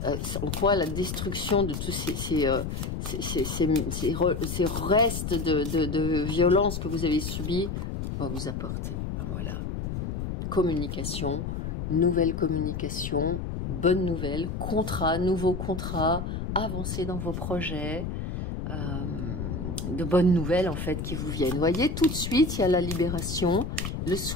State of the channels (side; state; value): left; noise; rumble, 4 dB below the sound